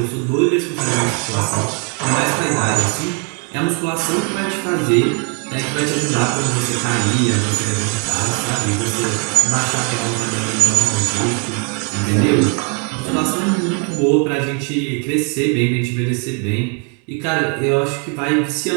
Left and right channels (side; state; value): left; quieter; 38.5 dB